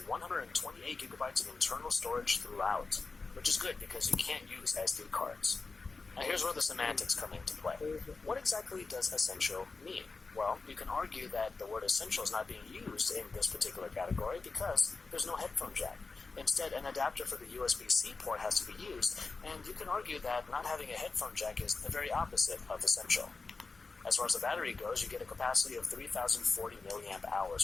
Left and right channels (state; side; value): quieter; right; 4.1 dB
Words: gigabytes of internal storage throughout, which is good because you can't use SD cards. Now here's where the semantics come into play. What exactly does essential mean? Well, you can argue that the word essential is not being used in this particular category because there's no headphone jack. Instead, an adapter for the USB-C port has to be used, and you can argue that not having a headphone jack is the very opposite of essential. As far as the battery goes, you get a capacity of 3,040 milliamp